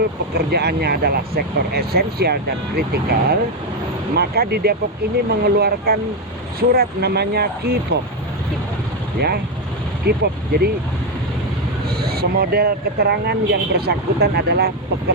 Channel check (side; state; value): both; normal; correlation 0.06